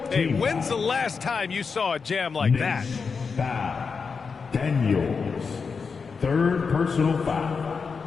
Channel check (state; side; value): quieter; right; 5.3 dB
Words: Hey, when's the last time you saw a jam like that? Foul. Daniels. Third personal foul.